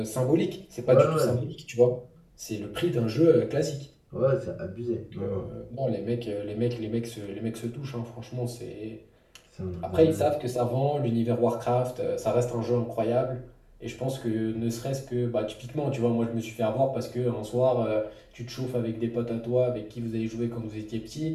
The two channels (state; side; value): identical; both; correlation 1.00